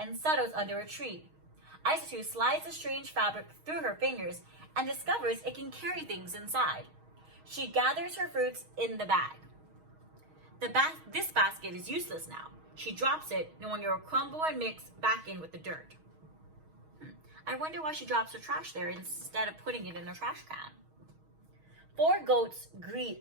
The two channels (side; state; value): left; late; 6.3 ms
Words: settles under a tree. Isatou slides the strange fabric through her fingers and discovers it can carry things inside. She gathers her fruits in the bag. This basket is useless now. She drops it, knowing it will crumble and mix back in with the dirt. I wonder why she drops her trash there instead of putting it in her trash can. 4 goats